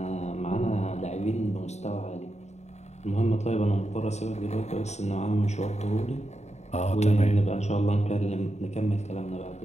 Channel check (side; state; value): right; late; 0.32 ms